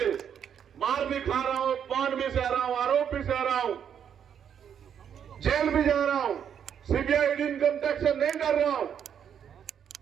मार भी खा रहा हूं, पान भी सह रहा हूं, आरोप भी सह रहा हूं, जेल भी जा रहा हूं, सीबीआई इनकम टैक्स से नहीं डर रहा हूं,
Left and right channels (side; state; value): left; quieter; 8.4 dB